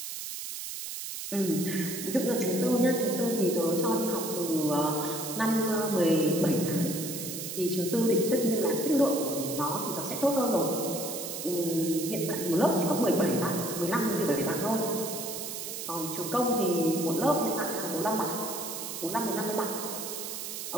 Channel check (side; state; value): right; noise; hiss, 7 dB below the sound